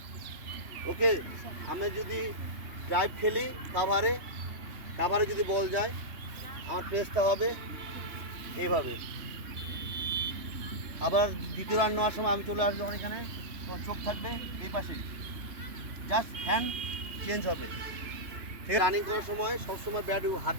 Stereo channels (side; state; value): left; late; 3.3 ms